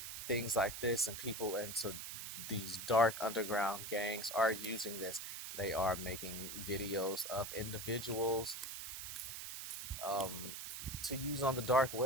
things like this, and people into these dark underground gangs are using this. They are making videos of individuals um, to use on the dark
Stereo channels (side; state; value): right; noise; hiss, 7 dB below the sound